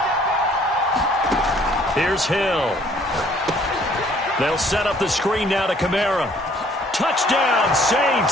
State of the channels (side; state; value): both; normal; correlation 0.60